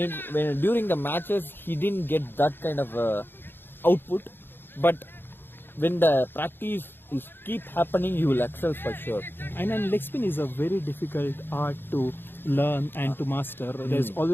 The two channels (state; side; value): late; right; 0.10 ms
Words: during the matches, he didn't get that kind of output. But when the practice is keep happening, you will excel for sure. And leg spin is a very difficult art to learn and to master. There's